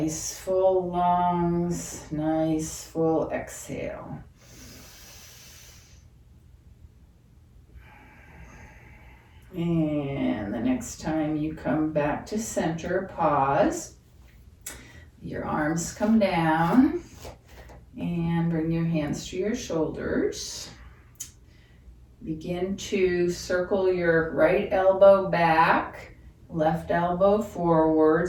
full lungs, nice full exhale. And the next time you come back to center, pause. Your arms come down and bring your hands to your shoulders. Begin to circle your right elbow back, left elbow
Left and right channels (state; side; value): identical; both; correlation 1.00